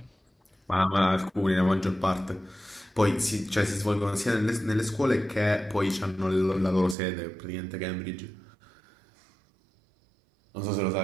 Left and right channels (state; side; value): drops out; left; at 7.0 s